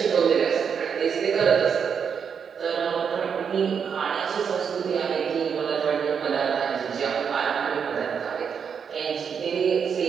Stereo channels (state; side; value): quieter; left; 6.9 dB